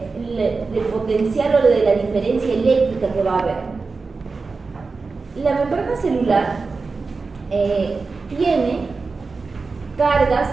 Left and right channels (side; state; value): left; quieter; 4.2 dB